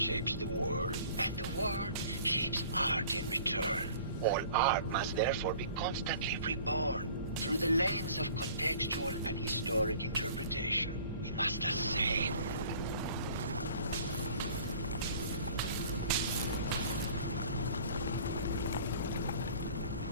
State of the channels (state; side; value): inverted; both; correlation -0.49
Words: the world, and the world shapes art in return. All art must therefore be constantly reborn through the lens of contextual and historic interpretation. We must ascend.